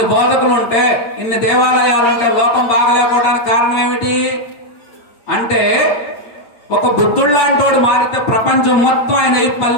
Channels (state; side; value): late; right; 8.7 ms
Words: బోధకులు ఉంటే, ఇన్ని దేవాలయాలు ఉంటే లోకం బాగలేకపోవడానికి కారణం ఏమిటి అంటే, ఒక బుద్ధుడు లాంటి వాడు మారితే ప్రపంచం మొత్తం ఆయన